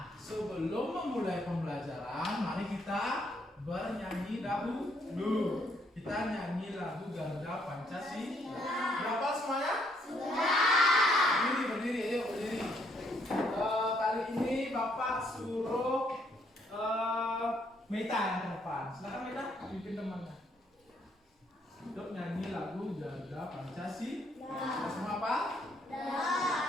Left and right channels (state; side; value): normal; both; correlation 0.70